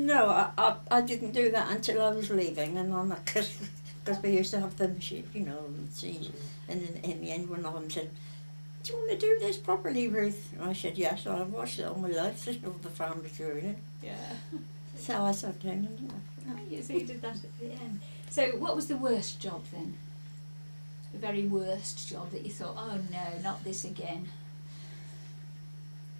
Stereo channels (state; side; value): inverted; both; correlation -1.00